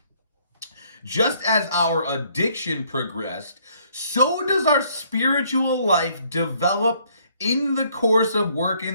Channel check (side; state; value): both; inverted; correlation -0.65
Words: Just as our addiction progressed, so does our spiritual life develop in the course of